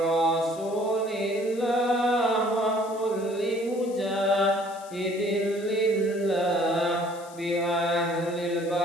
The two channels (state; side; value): noise; left; hiss, 21 dB below the sound